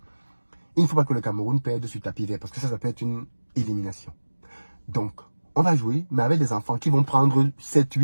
Il ne faut pas que le Cameroun perde sur tapis vert, parce que ça peut être une élimination. Donc, on va jouer, mais avec des enfants qui vont prendre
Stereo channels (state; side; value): inverted; both; correlation -1.00